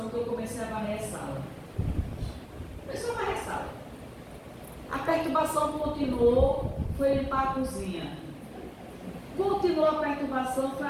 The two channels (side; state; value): both; identical; correlation 1.00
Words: que eu comecei a varrer a sala. Começou a varrer a sala. A perturbação continuou, foi limpar a cozinha. Continuou a perturbação, foi